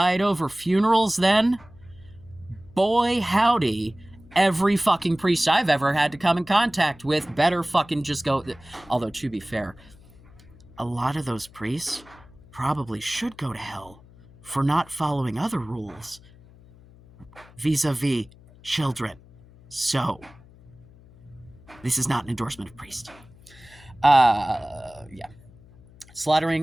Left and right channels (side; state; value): left; noise; hum, 24 dB below the sound